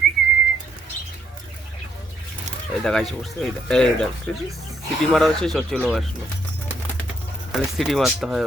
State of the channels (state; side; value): normal; both; correlation 0.72